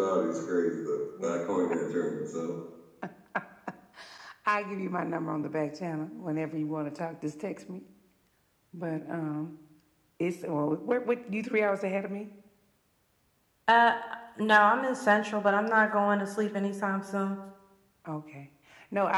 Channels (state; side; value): identical; both; correlation 1.00